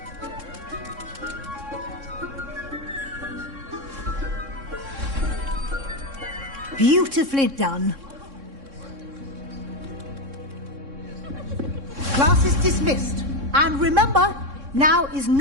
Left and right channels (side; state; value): left; late; 3.6 ms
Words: Beautifully done. Class is dismissed. And remember, now is